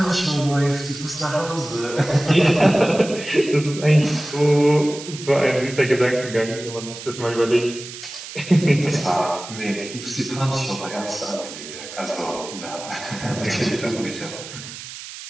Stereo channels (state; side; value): noise; right; hiss, 12 dB below the sound